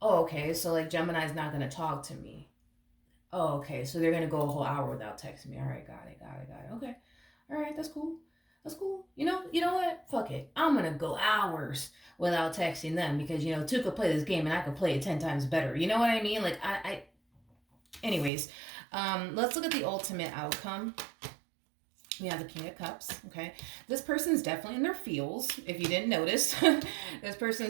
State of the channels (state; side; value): drops out; left; at 18.3 s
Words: Oh, okay. So like Gemini's not gonna talk to me. Oh, okay. So they're gonna go a whole hour without texting me. All right, got it. Okay. All right, that's cool. That's cool. You know what? Fuck it. I'm gonna go hours without texting them because two could play this game and I could play it 10 times better. You know what I mean? Like anyways, let's look at the ultimate outcome. We have the King of Cups. Okay, this person's definitely in their feels. If you didn't notice, this